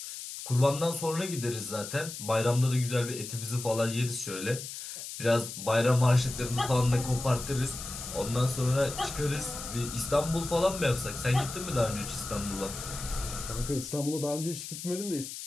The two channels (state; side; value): noise; left; hiss, 9 dB below the sound